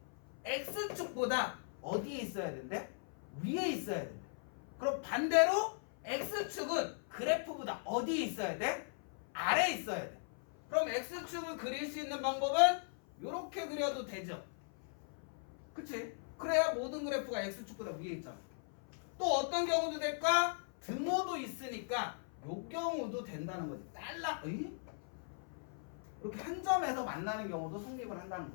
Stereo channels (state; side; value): silent; right; 52 dB below the other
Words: x축보다 어디에 있어야 된대? 위에 있어야 된대. 그럼 반대로 x축은 그래프보다 어디에 있어야 돼? 아래에 있어야 돼. 그럼 x축을 그릴 수 있는 방법은 이렇게 그려도 되죠. 그치? 그래야 모든 그래프가 x축보다 위에 있잖아. 또 어떤 경우도 될까? 등호도 있으니까 요 경우도 된다는 거지. 이렇게 한 점에서 만나는 경우도 성립을 한다는